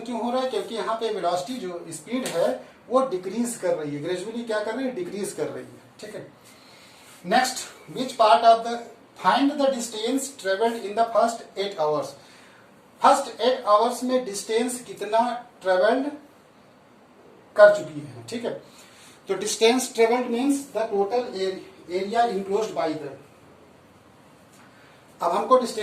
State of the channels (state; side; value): identical; both; correlation 1.00